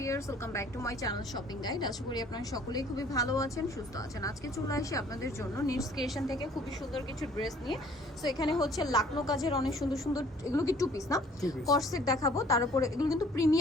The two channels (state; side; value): normal; both; correlation 0.56